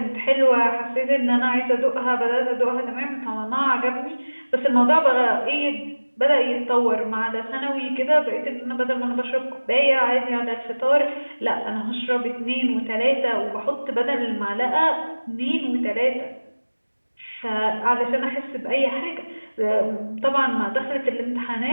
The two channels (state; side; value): inverted; both; correlation -1.00